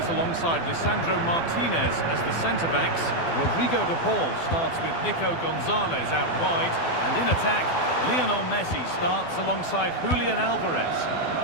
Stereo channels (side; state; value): right; late; 12 ms